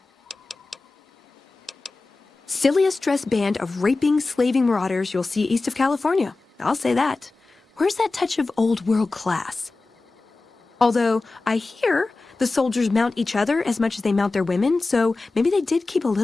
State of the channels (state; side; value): quieter; right; 3.5 dB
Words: Silliest dressed band of raping, slaving marauders you'll see east of California. I'll say that. Where's that touch of old world class? Although, I hear the soldiers mount each other as much as they mount their women, so maybe they did keep a